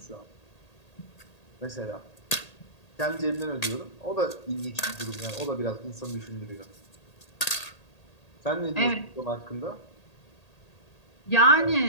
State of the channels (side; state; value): right; late; 1.8 ms